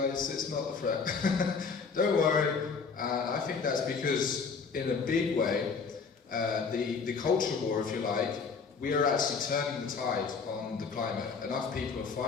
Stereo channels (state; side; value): quieter; right; 5.3 dB